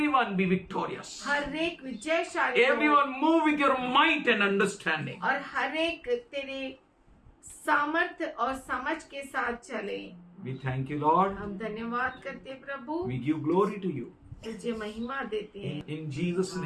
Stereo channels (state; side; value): identical; both; correlation 1.00